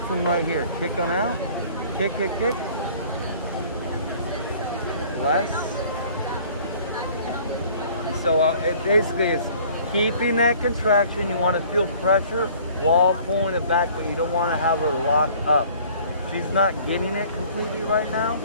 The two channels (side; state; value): both; inverted; correlation -0.53